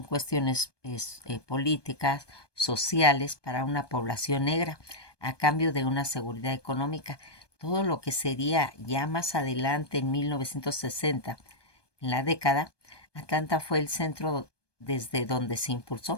cuestiones políticas, sociales para una población negra, a cambio de una seguridad económica. Todo lo que sería ya más adelante, en 1960, en la década, Atlanta fue el centro desde donde se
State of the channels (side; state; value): right; late; 1.2 ms